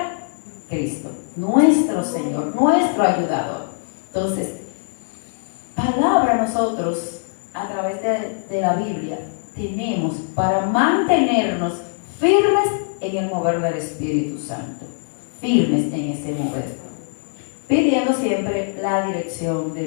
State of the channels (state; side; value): silent; right; 65 dB below the other